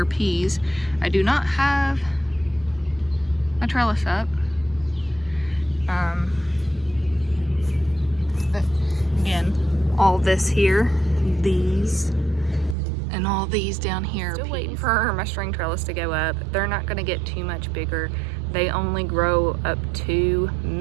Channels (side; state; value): left; drops out; at 12.8 s